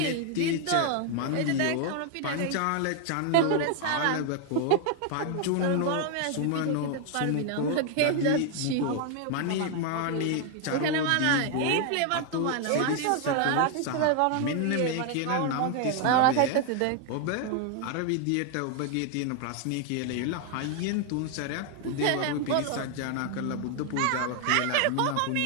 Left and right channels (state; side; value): different; both; correlation 0.00